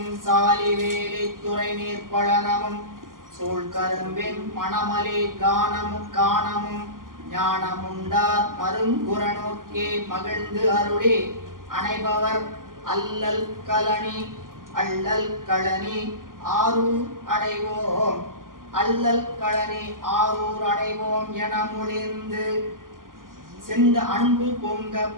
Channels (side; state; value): left; late; 0.90 ms